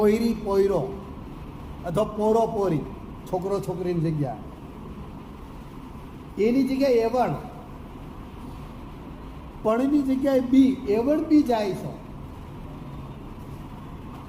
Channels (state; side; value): identical; both; correlation 1.00